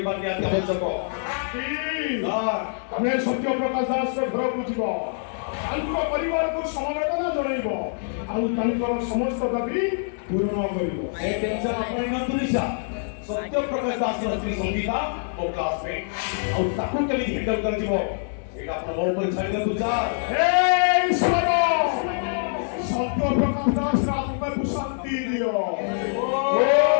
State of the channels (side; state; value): right; silent; 58 dB below the other